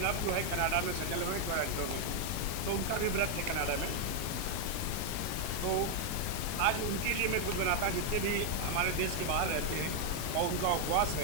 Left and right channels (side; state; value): both; different; correlation 0.00